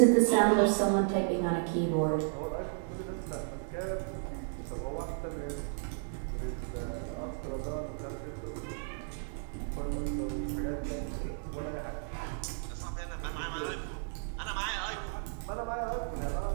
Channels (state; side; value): silent; left; digital silence